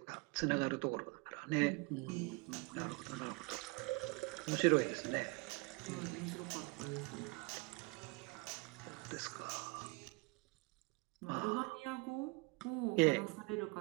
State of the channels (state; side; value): quieter; left; 27.4 dB